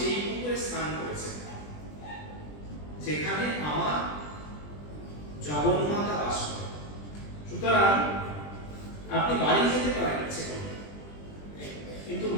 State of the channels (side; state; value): right; late; 20 ms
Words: পুকুরে স্নান করেছেন যেখানে আমার জগন্মাতা বাস করে, সুতরাং আপনি বাড়ি যেতে পারেন ইচ্ছে করলে, কিন্তু